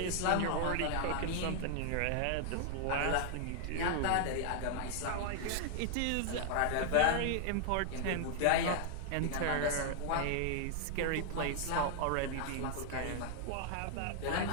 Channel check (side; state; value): both; different; correlation 0.00